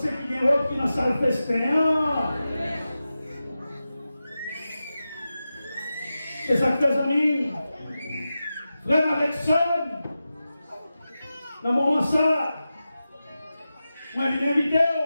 qu'il y a une robe qui est dans la salle festin. C'est ça que tes amis, frère avec son, dans le moment ça, moi je viens inviter,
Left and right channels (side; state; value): both; inverted; correlation -0.93